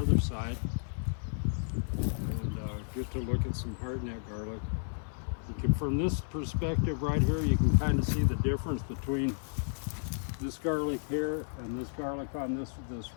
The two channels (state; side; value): silent; right; digital silence